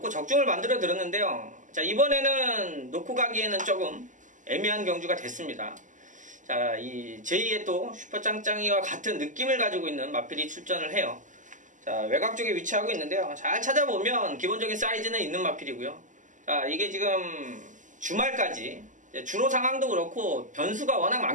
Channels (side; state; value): left; late; 0.37 ms